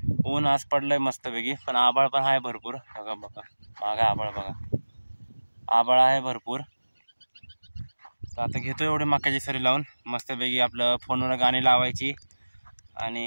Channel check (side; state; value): both; inverted; correlation -1.00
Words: ऊन आज पडलंय मस्तपैकी, पण आभाळ पण आहे भरपूर. बघा मागं आभाळ बघा, आभाळ आहे भरपूर. तर आता घेतो एवढी मक्याची सरी लावून मस्तपैकी. आपलं फोनवर गाणी लावायची